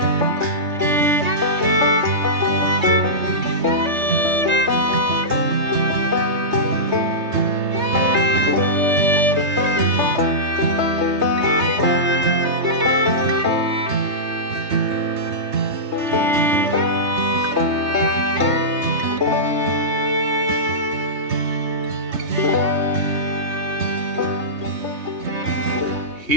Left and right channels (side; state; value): left; late; 3.3 ms